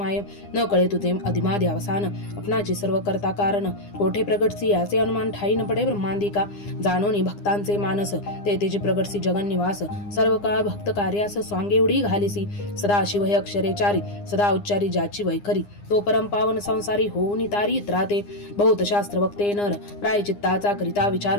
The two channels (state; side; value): late; right; 9.8 ms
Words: न कळे तुझे अधिमादी अवसान अपनाचे सर्व करता कारण कोठे प्रगटसी याचे अनुमान ठाई न पडे ब्रह्मांदिका जाणोनी भक्तांचे मानस ते तेचे प्रगटसी जगन निवास सर्व काळ भक्त कार्यास स्वांगे उडी घालिसी सदा शिव हे अक्षरेचारी सदा उच्चारी ज्याची वैखरी तो परम पावन संसारी होऊन तारी त्राते बहुत शास्त्र वक्ते नर प्रायचित्ताचा करिता विचार